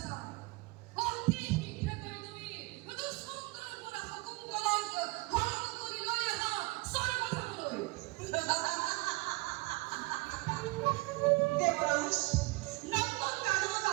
অতি শীঘ্ৰে কৰি তুমি দুষ্মন্তৰ পৰা শকুন্তলাক হৰণ কৰি লৈ আহা স্বৰ্গধামলৈ দেবরাজ নন্দন কানন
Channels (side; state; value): left; quieter; 24.4 dB